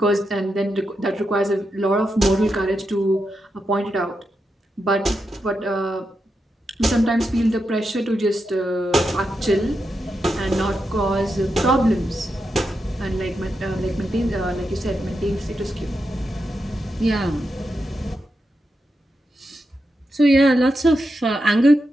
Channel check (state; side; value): normal; both; correlation 0.87